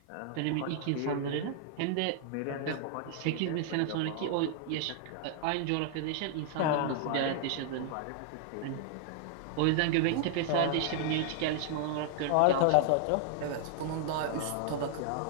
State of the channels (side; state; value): both; different; correlation 0.00